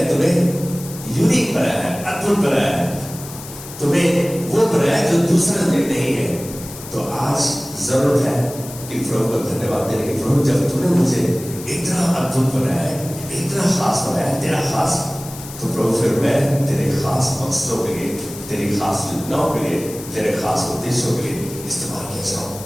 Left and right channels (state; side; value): noise; left; hiss, 14 dB below the sound